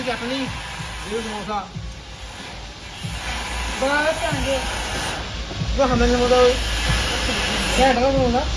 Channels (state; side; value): identical; both; correlation 1.00